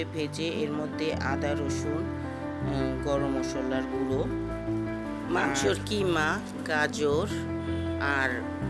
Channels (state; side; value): identical; both; correlation 1.00